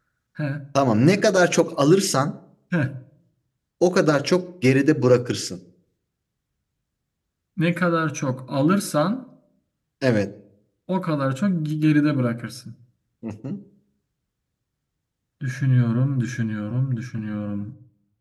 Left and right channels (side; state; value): both; identical; correlation 1.00